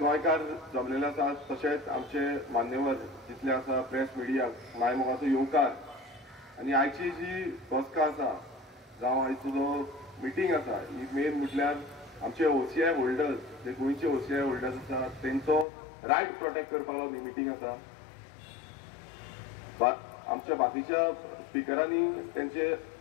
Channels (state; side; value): drops out; right; at 15.7 s